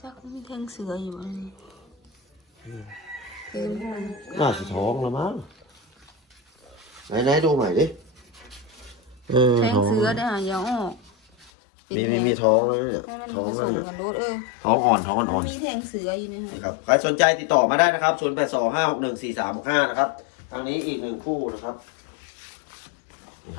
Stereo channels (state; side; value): drops out; right; at 11.5 s